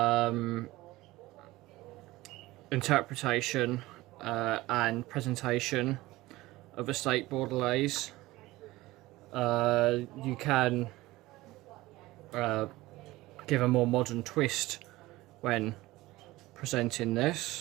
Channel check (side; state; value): left; quieter; 18.7 dB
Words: interpretation and presentation of a steak bordelaise. You can give a more modern twist when presenting